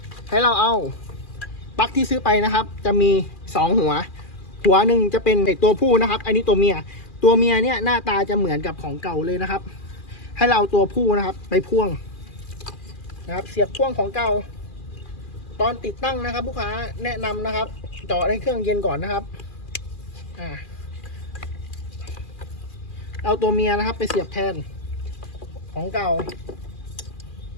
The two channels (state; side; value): late; right; 2.4 ms